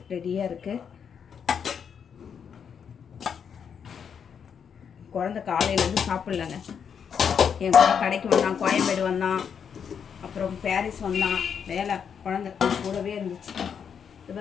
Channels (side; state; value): right; quieter; 7.3 dB